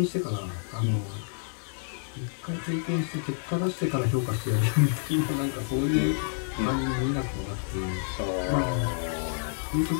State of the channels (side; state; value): right; silent; digital silence